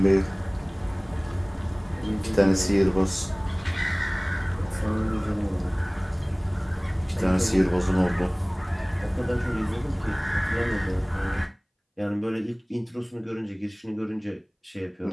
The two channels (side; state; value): both; identical; correlation 1.00